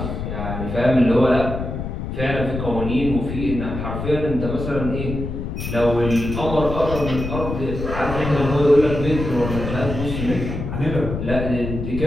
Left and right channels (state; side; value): noise; left; rumble, 5 dB below the sound